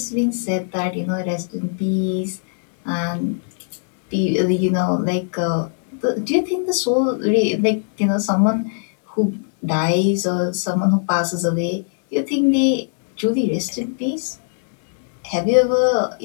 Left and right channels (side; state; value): right; silent; digital silence